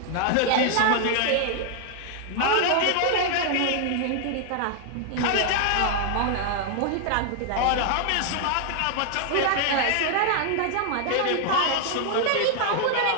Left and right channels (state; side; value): different; both; correlation 0.00